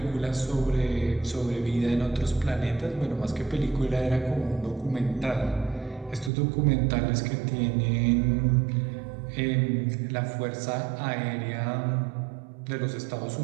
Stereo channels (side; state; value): left; drops out; at 6.3 s